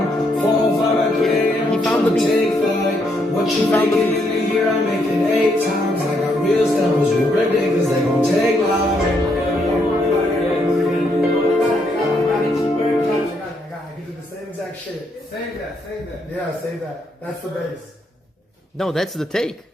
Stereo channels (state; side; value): normal; both; correlation 0.75